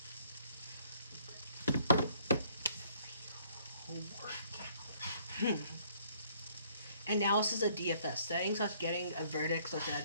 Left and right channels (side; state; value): both; inverted; correlation -0.62